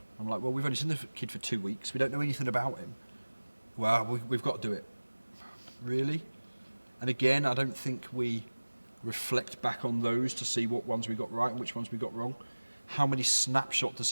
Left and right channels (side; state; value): both; inverted; correlation -1.00